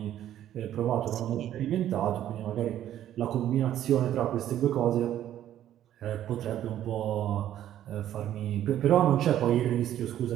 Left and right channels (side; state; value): left; quieter; 11.7 dB